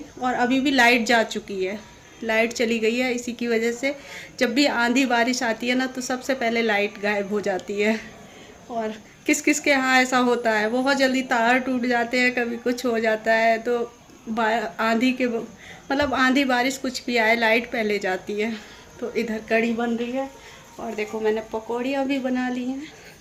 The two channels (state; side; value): identical; both; correlation 1.00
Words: और अभी भी लाइट जा चुकी है, लाइट चली गई है। इसी की वजह से जब भी आंधी बारिश आती है ना तो सबसे पहले लाइट गायब हो जाती है। और किस किस के यहाँ ऐसा होता है, बहुत जल्दी तार टूट जाते हैं, कभी कुछ हो जाता है। तो आंधी के मतलब आंधी बारिश कुछ भी आए, लाइट पहले जाती है। तो इधर कड़ी बन रही है। और देखो मैंने पकौड़ियाँ भी बना ली हैं,